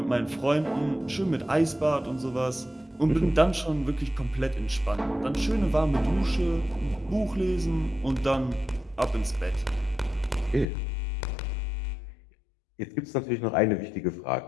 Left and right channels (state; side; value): drops out; right; at 10.7 s